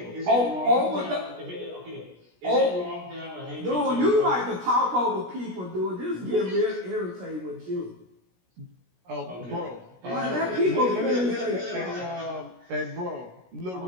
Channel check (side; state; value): left; late; 17 ms